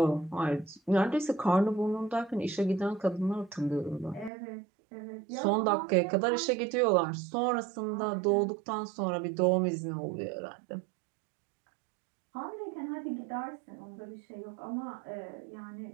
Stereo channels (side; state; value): left; drops out; at 4.3 s